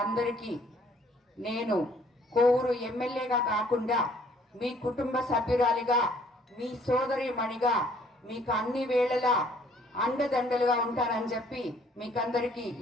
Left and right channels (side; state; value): both; normal; correlation 0.60